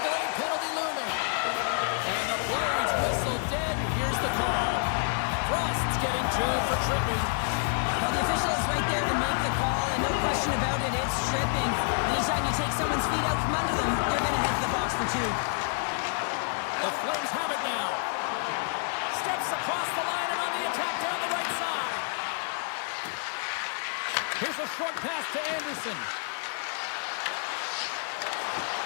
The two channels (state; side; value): silent; right; 59 dB below the other